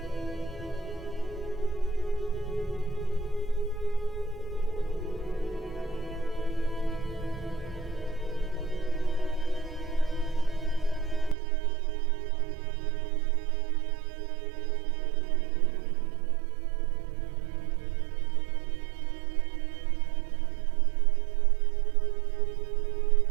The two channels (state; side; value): drops out; left; at 11.4 s